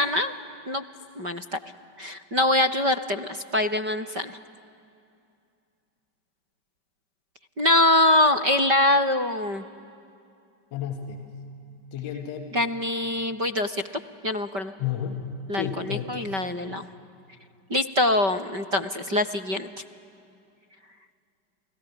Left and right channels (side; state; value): left; late; 5.2 ms